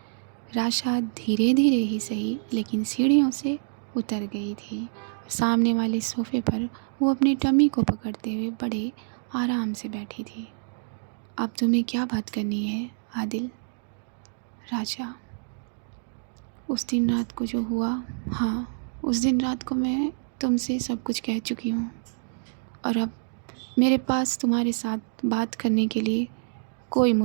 राशा धीरे धीरे ही सही, लेकिन सीढ़ियों से उतर गई थी। सामने वाले सोफ़े पर वो अपनी टमी को पकड़ते हुए बड़े आराम से बैठी थी। अब तुम्हें क्या बात करनी है आदिल? राशा, उस दिन रात को जो हुआ, हाँ, उस दिन रात को मैं तुमसे सब कुछ कह चुकी हूँ, और अब मेरे पास तुम्हारे साथ बात करने के लिए कोई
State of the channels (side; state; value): left; silent; digital silence